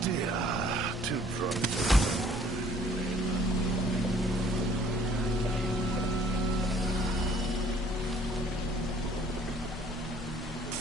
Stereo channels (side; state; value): both; normal; correlation 0.58